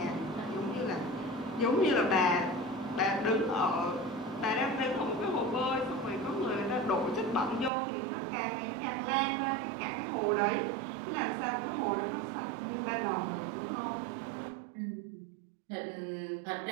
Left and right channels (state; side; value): drops out; left; at 7.7 s